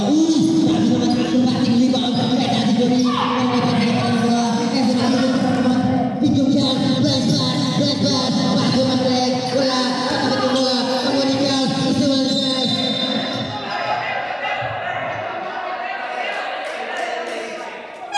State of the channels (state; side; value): identical; both; correlation 1.00